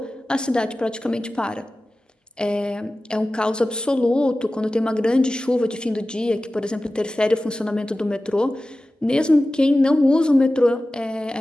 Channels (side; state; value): both; normal; correlation 0.96